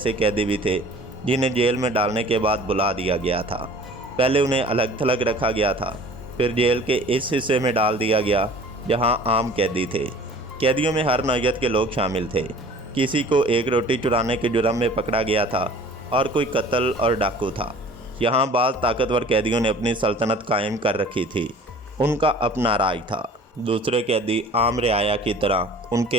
قیدی بھی تھے جنہیں جیل میں ڈالنے کے بعد بلا دیا گیا تھا۔ پہلے انہیں الگ تھلگ رکھا گیا تھا، پھر جیل کے اس حصے میں ڈال دیا گیا جہاں عام قیدی تھے۔ قیدیوں میں ہر نوعیت کے لوگ شامل تھے۔ کسی کو 1 روٹی چرانے کے جرم میں پکڑا گیا تھا اور کوئی قتل اور ڈاکو تھا۔ یہاں بعض طاقتور قیدیوں نے اپنی سلطنت قائم کر رکھی تھی۔ ان کا اپنا راج تھا۔ دوسرے قیدی عام رعایا کی طرح ان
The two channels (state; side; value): normal; both; correlation 0.47